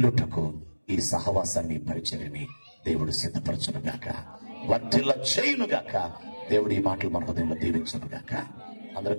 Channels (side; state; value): both; inverted; correlation -1.00